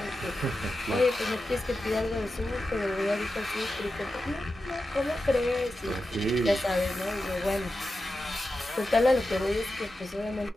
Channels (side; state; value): both; normal; correlation 0.91